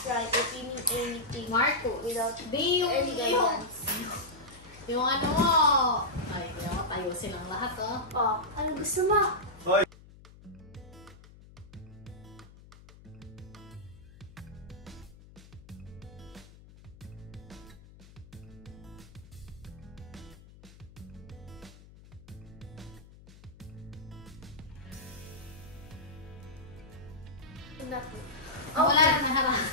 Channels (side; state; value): left; noise; hum, 21 dB below the sound